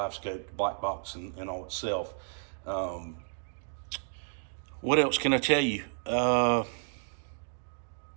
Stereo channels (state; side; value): silent; left; 56 dB below the other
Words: black box and all itself. What else can I tell you?